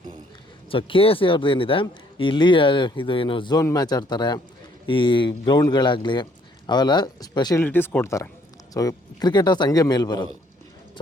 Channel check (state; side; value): normal; both; correlation 0.64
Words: ಸೊ KSE ಅವ್ರದ್ದು ಏನಿದೆ, ಇಲ್ಲಿ ಇದು ಏನು ಝೋನ್ ಮ್ಯಾಚ್ ಆಡ್ತಾರೆ, ಈ ಗ್ರೌಂಡ್ಗಳಾಗಲಿ ಅವೆಲ್ಲ ಸ್ಪೆಷಲಿಟೀಸ್ ಕೊಡ್ತಾರೆ. ಸೊ ಕ್ರಿಕೆಟರ್ಸ್ ಹಂಗೆ ಮೇಲೆ ಬರೋದು. ಸೊ